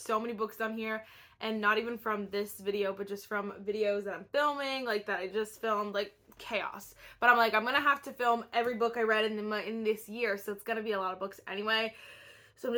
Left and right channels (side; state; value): both; identical; correlation 1.00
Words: many books on here, and not even from this video, but just from videos that I'm filming, like that I just filmed, like chaos. But I'm like, I'm gonna have to film every book I read in this year, so it's gonna be a lot of books anyway. So I'm